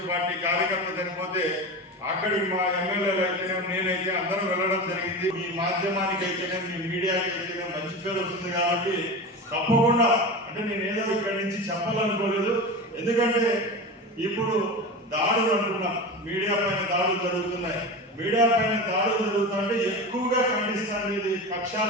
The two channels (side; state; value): both; normal; correlation 0.27